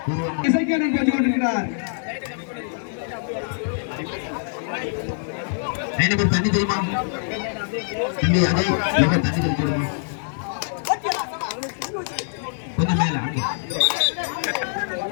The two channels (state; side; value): silent; right; 63 dB below the other